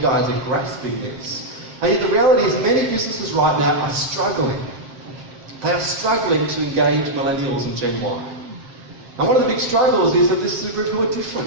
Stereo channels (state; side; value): late; left; 7.6 ms